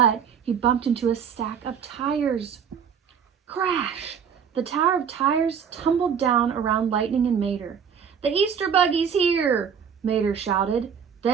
he bumped into a stack of tires. Crash! The tower of tires tumbled down around Lightning and Mater. "The Easter buggy's here!" Mater shouted.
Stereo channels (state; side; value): quieter; left; 7.4 dB